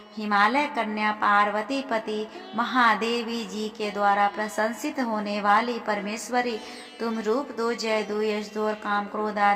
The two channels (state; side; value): identical; both; correlation 1.00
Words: हिमालय कन्या पार्वती पति महादेवी जी के द्वारा प्रशंसित होने वाली परमेश्वरी, तुम रूप दो, जय दो, यश दो और काम क्रोध